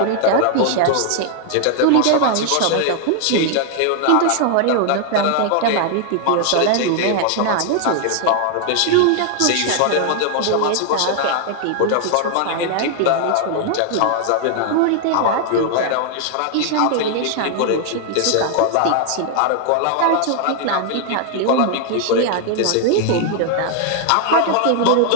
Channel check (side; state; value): both; different; correlation 0.00